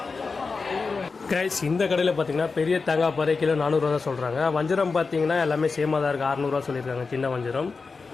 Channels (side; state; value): right; quieter; 4.5 dB